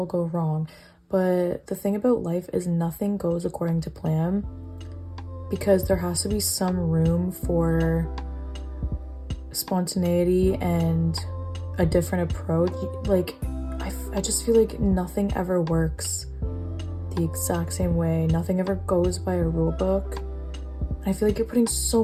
go wrong. But the thing about life is nothing goes according to plan, because there has to be some room for spontaneity and a different approach. Like, I just feel like nothing ever works the exact same way. Nothing ever goes by a rule book. I feel like you're putting so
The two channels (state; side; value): identical; both; correlation 1.00